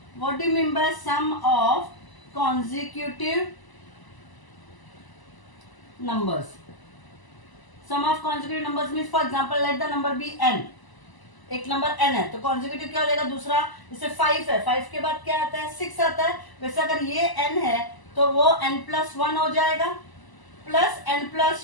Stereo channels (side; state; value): right; late; 1.0 ms